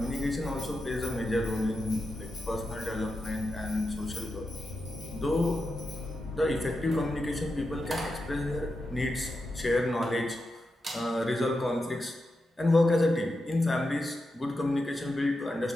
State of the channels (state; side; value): normal; both; correlation 0.88